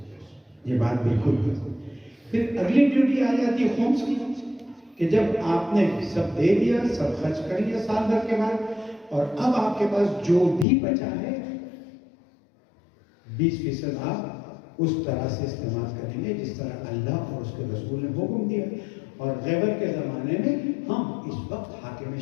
یہ بات بالکل ہے۔ پھر اگلی ڈیوٹی آ جاتی ہے خمس کی، کہ جب آپ نے سب دے دیا، سب خرچ کر لیا سال بھر کے بعد، اور اب آپ کے پاس جو بھی بچا ہے 20% آپ اس طرح سے استعمال کریں گے جس طرح اللہ اور اس کے رسول نے حکم دیا. اور غیبت کے زمانے میں ہم اس وقت حاکم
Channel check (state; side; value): drops out; right; at 10.7 s